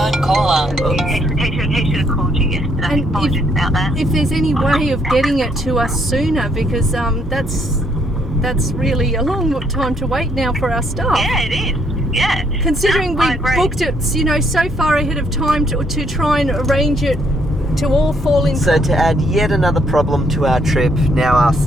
caller. He should have called you yesterday. Apologies about that. If there's any way of getting it to us sooner, because that's that's really a long time to wait now for our stuff. Yeah, it is. Yeah. Considering I we agree. booked it, you know, so far ahead of time to try and arrange it to all fall in. So to add yet another problem to our trip, now our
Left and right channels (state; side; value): normal; both; correlation 0.69